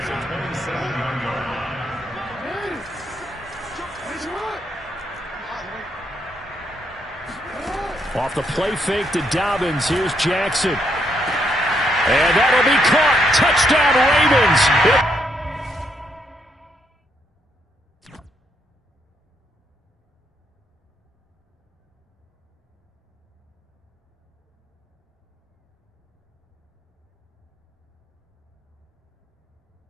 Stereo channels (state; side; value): normal; both; correlation 0.75